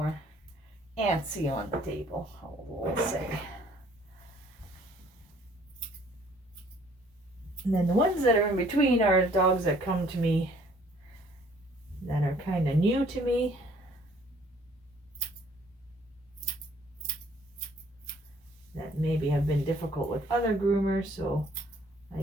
antsy on the table, we'll say. And then the ones that are in between are dogs that come to me that are kind of new to me. That maybe have been difficult with other groomers, so I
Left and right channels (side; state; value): both; normal; correlation 0.59